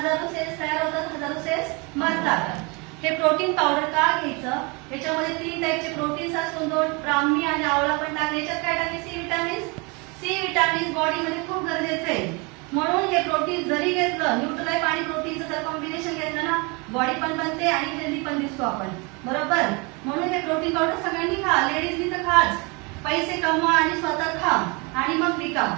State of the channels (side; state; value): left; quieter; 29.4 dB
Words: सेल्स तयार होतात, हजारो सेल्स मरतात. हे प्रोटीन पावडर का घ्यायचं? याच्यामध्ये 3 टाईपचे प्रोटीन्स असून 2 ब्राह्मी आणि आवळा पण टाकले. याच्यात काय टाकले? C vitamin. सी विटामिन बॉडीमध्ये खूप गरजेचं आहे. म्हणून हे प्रोटीन जरी घेतलं, न्यूट्रीलाइट आणि प्रोटीनचं जर कॉम्बिनेशन घेतलं ना, बॉडी पण बनते आणि हेल्दी पण दिसतो आपण, बरोबर? म्हणून हे प्रोटीन पावडर सगळ्यांनी खा. लेडीजनी तर खाच. पैसे कमवा आणि स्वतः खा आणि मग विका.